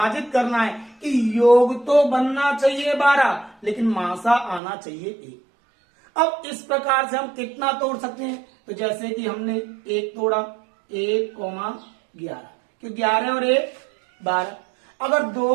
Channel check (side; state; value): left; drops out; at 4.6 s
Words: करना है कि योग तो बनना चाहिए 12, लेकिन मासा आना चाहिए 1। अब इस प्रकार से हम कितना तोड़ सकते हैं, तो जैसे कि हमने 1 तोड़ा 1,11, क्यों 11 और 1 12। अगर 2